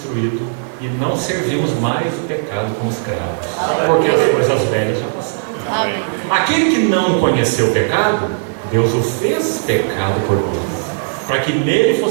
e não servimos mais o pecado como escravos, porque as coisas velhas já passaram. Amém. Aquele que não conheceu o pecado, Deus o fez pecado por nós, para que nele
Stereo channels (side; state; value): left; silent; digital silence